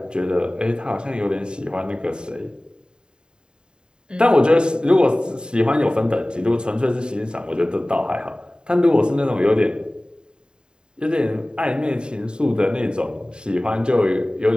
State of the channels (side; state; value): left; late; 0.048 ms